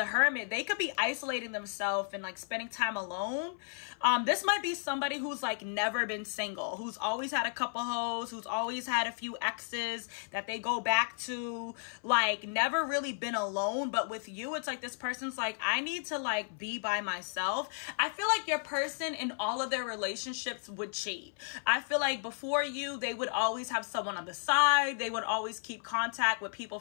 Hermit. They could be isolating themselves and like spending time alone. This might be somebody who's like never been single, who's always had a couple hoes, who's always had a few exes that they go back to, like never really been alone. But with you, it's like this person's like, I need to like be by myself. I feel like your person in all of their relationships would cheat. I feel like before you, they would always have someone on the side. They would always keep contact with people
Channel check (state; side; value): silent; right; 55 dB below the other